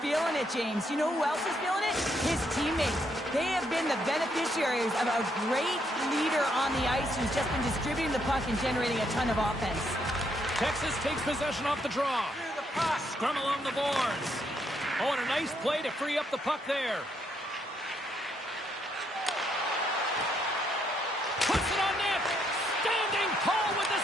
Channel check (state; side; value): normal; both; correlation 0.75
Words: feeling it, James. You know who else is feeling it? His teammates. They have been the beneficiaries of a great leader on the ice who's just been distributing the puck and generating a ton of offense. Texas takes possession off the draw. Scrum along the boards. Oh, and a nice play to free up the puck there. Puts it on net. Standing tall with the